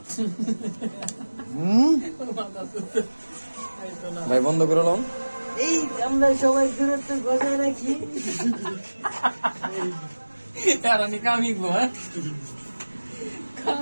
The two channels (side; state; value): both; inverted; correlation -1.00